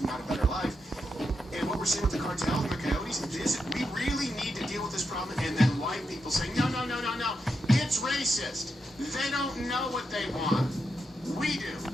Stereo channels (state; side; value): normal; both; correlation 0.85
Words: out a better life. And what we're seeing with the cartels and the coyotes is we really need to deal with this problem. And then white people saying, no, it's racist. They don't know what they want. We do.